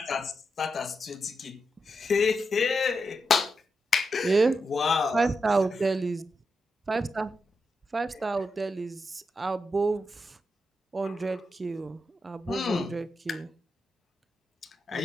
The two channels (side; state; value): both; normal; correlation 0.86